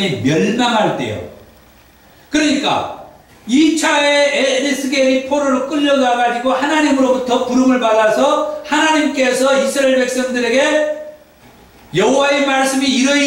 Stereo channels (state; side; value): identical; both; correlation 1.00